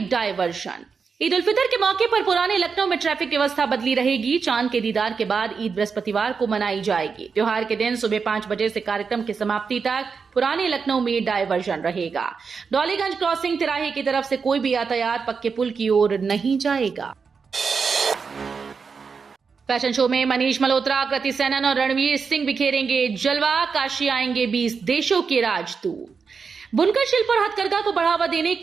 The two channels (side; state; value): left; quieter; 5.5 dB